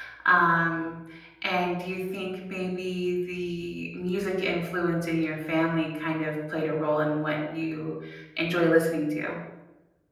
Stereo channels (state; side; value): identical; both; correlation 1.00